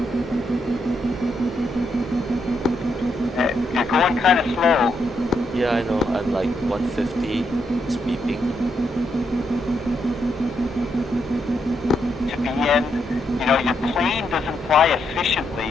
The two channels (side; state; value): both; normal; correlation 0.79